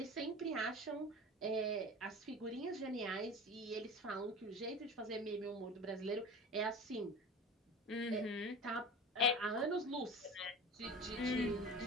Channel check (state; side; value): normal; both; correlation 0.34